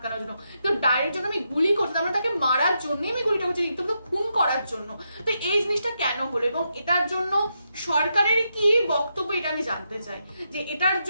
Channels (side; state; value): both; inverted; correlation -0.82